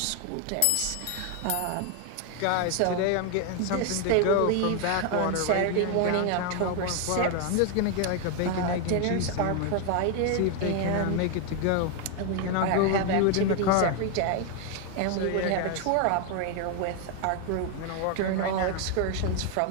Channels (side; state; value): both; different; correlation 0.01